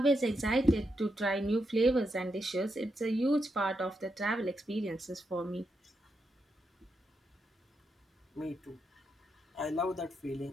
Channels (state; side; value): normal; both; correlation 0.83